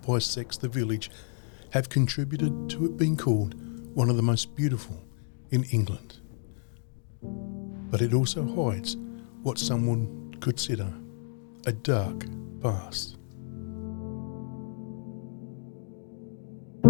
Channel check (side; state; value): right; silent; digital silence